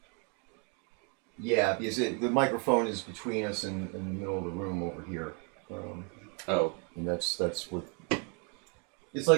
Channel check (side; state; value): left; quieter; 36.9 dB